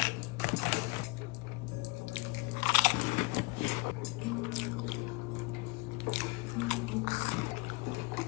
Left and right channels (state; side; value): quieter; right; 26.6 dB